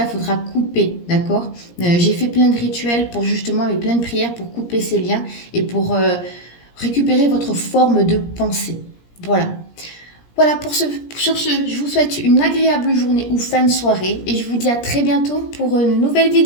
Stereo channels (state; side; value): late; right; 17 ms